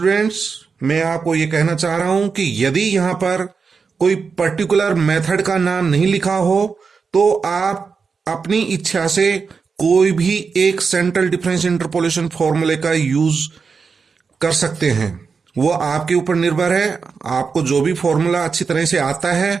मैं आपको यह कहना चाह रहा हूं कि यदि यहां पर कोई पर्टिकुलर मेथड का नाम नहीं लिखा हो तो आप अपनी इच्छा से कोई भी एक सेंट्रल डिफरेंस इंटरपोलेशन फॉर्मूले का यूज कर सकते हैं। वो आपके ऊपर निर्भर है। आपको जो भी फॉर्मूला अच्छी तरह से आता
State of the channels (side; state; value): left; quieter; 5.3 dB